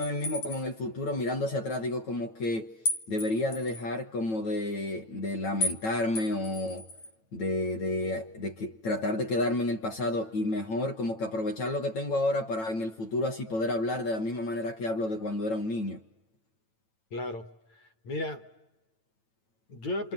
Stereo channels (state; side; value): late; right; 9.1 ms